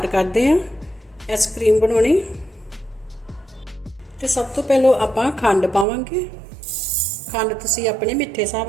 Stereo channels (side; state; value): left; drops out; at 5.9 s